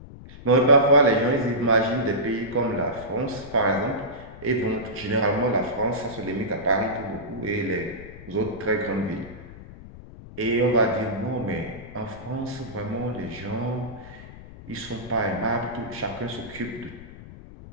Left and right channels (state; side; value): noise; left; rumble, 16 dB below the sound